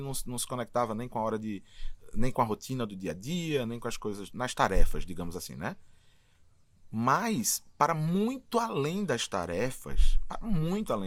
se conectava nem com a hora nem com a rotina do dia a dia, nem com as coisas, nas tarefas, digamos assim, né? Mas, para muito além das tarefas,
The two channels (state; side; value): identical; both; correlation 1.00